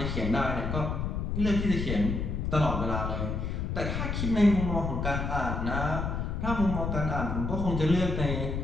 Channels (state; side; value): noise; left; rumble, 2 dB below the sound